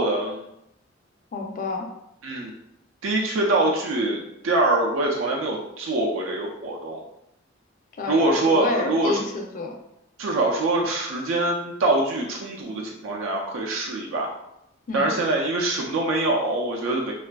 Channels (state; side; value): normal; both; correlation 0.15